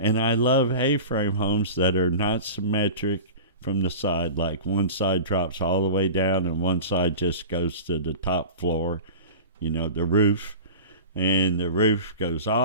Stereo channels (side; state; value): both; inverted; correlation -0.33